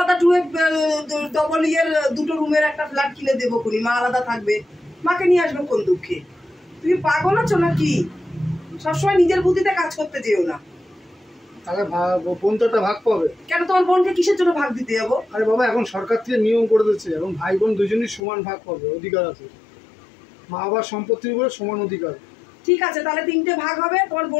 ডবল ইয়ের 2টো রুমের একটা ফ্ল্যাট কিনে দেবো কোনি, মা আলাদা থাকবে। মাকে নিয়ে আসবো কোন দুঃখে? তুমি পাগল আছো নাকি? সবসময় নিজের বুদ্ধিতে কাজ করতে যেও না। তাহলে বোন তো একটা ভাগ পাবে। কেন তোমার বোনকে কিসের জন্য ভাগ দিতে যাবো? আরে বাবা, এখন সরকার থেকে নিয়ম করে দিচ্ছে, এখন ভাই বোন দুজনই সমান ভাগ পাবে, অধিকার আছে। মা বাবার সম্পত্তির উপরে সমান অধিকার। ঠিক আছে, তাহলে 3টে ভাগ হবে, তোমার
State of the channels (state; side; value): drops out; right; at 18.2 s